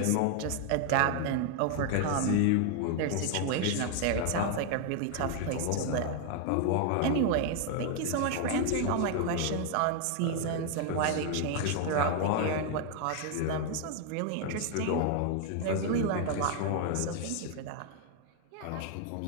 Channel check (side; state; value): both; different; correlation 0.00